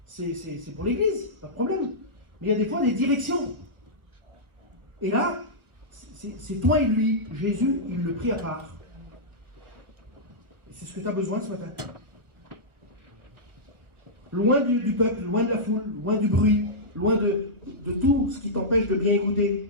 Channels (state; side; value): late; left; 1.5 ms